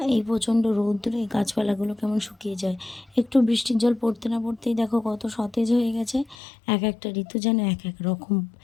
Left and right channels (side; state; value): right; drops out; at 6.4 s